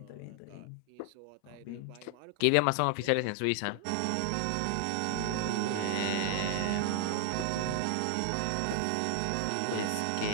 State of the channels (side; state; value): both; different; correlation 0.00